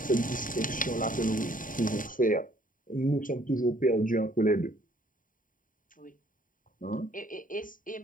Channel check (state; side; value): late; right; 0.39 ms